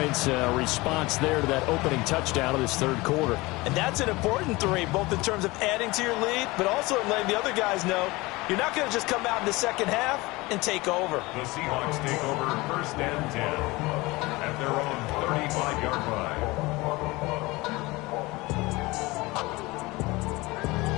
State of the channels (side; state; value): right; quieter; 22.1 dB